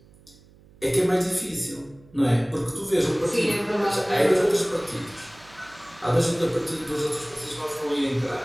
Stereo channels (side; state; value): right; noise; hum, 26 dB below the sound